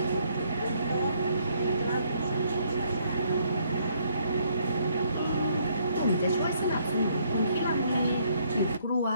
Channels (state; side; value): inverted; both; correlation -0.69